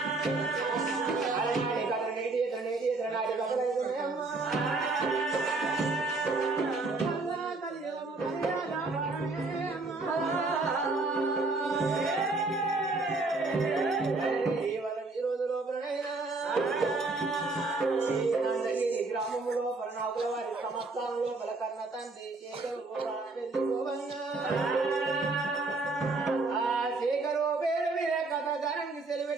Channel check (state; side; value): quieter; left; 3.5 dB